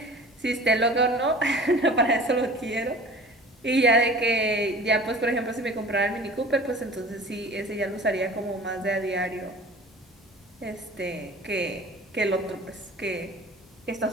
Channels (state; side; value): normal; both; correlation 0.42